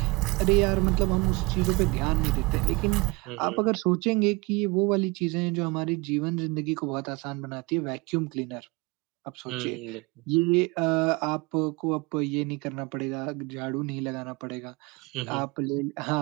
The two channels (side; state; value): left; quieter; 25.7 dB